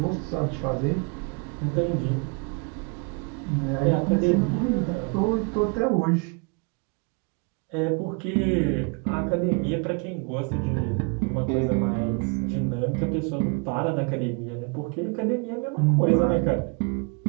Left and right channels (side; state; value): left; quieter; 33.9 dB